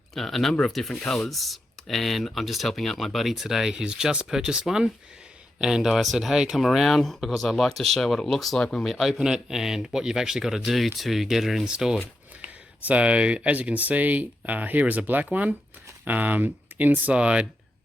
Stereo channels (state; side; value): normal; both; correlation 0.86